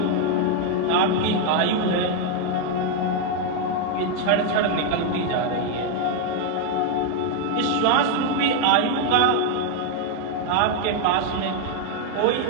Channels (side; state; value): both; different; correlation 0.01